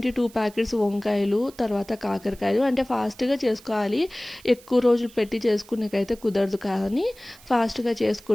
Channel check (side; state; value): right; noise; hiss, 23 dB below the sound